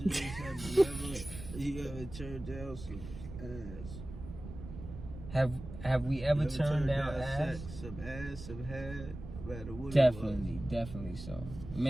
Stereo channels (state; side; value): noise; right; rumble, 11 dB below the sound